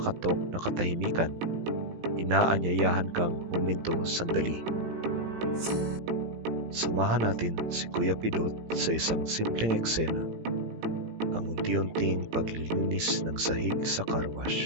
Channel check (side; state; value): left; late; 18 ms